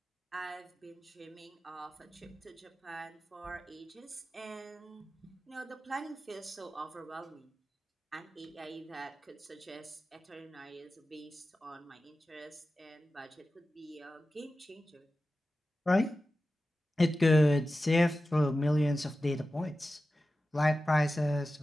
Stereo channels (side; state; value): both; normal; correlation 0.94